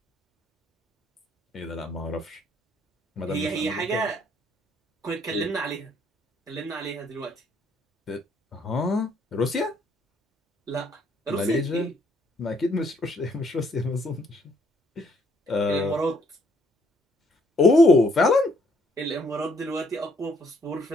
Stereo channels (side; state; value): both; normal; correlation 0.67